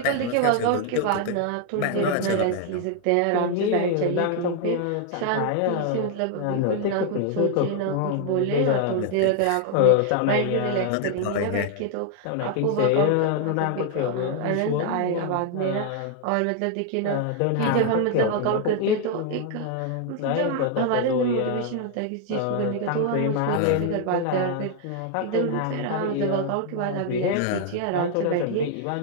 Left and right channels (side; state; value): both; different; correlation 0.00